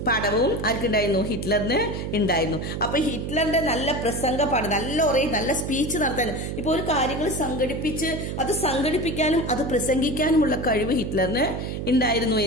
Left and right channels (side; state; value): right; noise; hum, 4 dB below the sound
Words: ആർക്കുണ്ടായിരുന്നു? ഹിറ്റ്ലറിന് ഉണ്ടായിരുന്നു. അപ്പൊ ഹിറ്റ്ലറിന്റെ നല്ല പ്രസംഗ പാഠം, നല്ല സ്പീച്ച് നടത്താൻ, ഇപ്പൊ ഒരു കാര്യങ്ങൾ സംഘടിപ്പിക്കാനും അത് പ്രസംഗിക്കാനുമുള്ള കഴിവ് ഹിറ്റ്ലറിന് ഉണ്ടായിരുന്നു